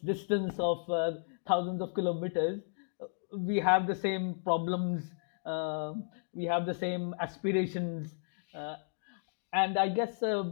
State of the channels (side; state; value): right; silent; digital silence